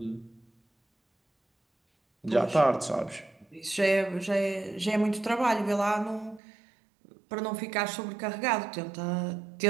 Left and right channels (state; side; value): drops out; left; at 6.4 s